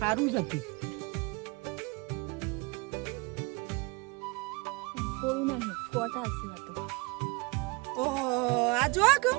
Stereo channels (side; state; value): left; quieter; 27.8 dB